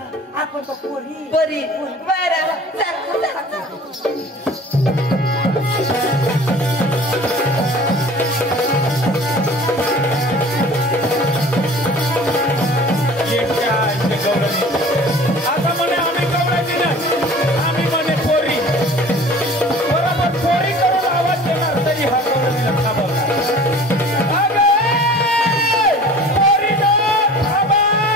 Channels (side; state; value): both; normal; correlation 0.44